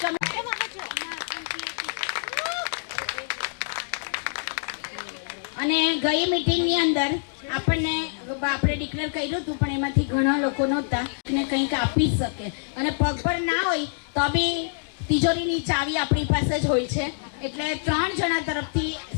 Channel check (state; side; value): silent; right; digital silence